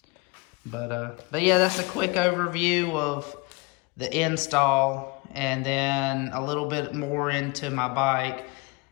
But yeah, that's a quick overview of the install, and then a little bit more into my bike.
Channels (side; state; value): right; quieter; 26.7 dB